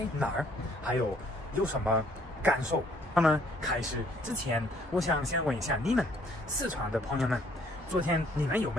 哪儿，还有什么感受。那么开始之前，我想先问一下你们四川的朋友们，昨天你们有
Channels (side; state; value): both; normal; correlation 0.63